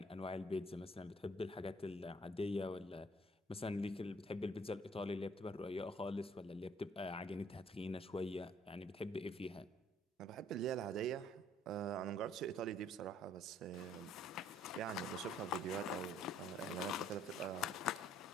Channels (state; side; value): normal; both; correlation 0.61